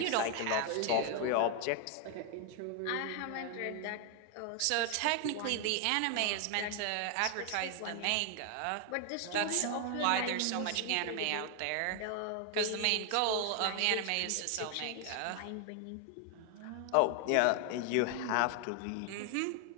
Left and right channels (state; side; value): different; both; correlation 0.00